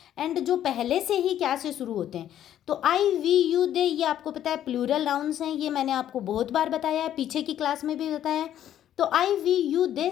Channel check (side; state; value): right; quieter; 11.1 dB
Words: एंड जो पहले से ही क्या से शुरू होते हैं। तो आई, वी, यू, दे, ये आपको पता है प्लूरल नाउन्स हैं। ये मैंने आपको बहुत बार बताया है, पीछे की क्लास में भी बताया है। तो आई, वी, यू, दे